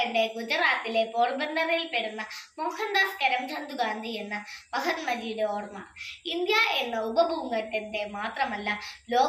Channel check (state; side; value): identical; both; correlation 1.00